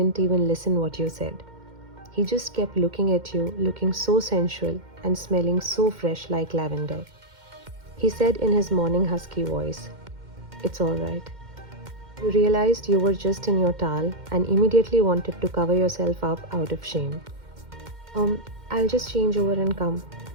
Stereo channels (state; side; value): late; left; 2.1 ms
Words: even listen what you said. He just kept looking at you, looking so sensual and smelling so fresh like lavender. He said in his morning husky voice, "It's alright." You realized you were just in your towel and immediately wanted to cover yourself up out of shame. I'll just change over and come."